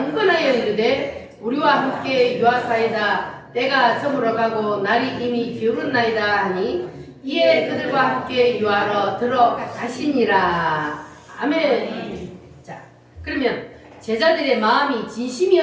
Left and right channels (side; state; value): both; identical; correlation 1.00